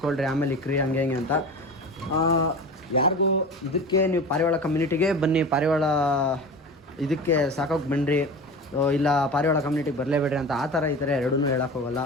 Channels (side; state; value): both; normal; correlation 0.32